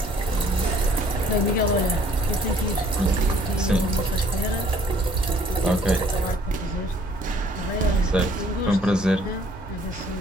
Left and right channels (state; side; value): normal; both; correlation 0.60